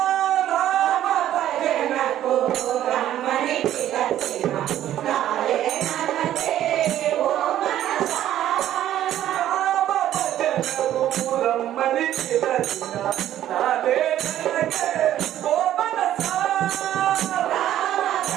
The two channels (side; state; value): left; quieter; 12.1 dB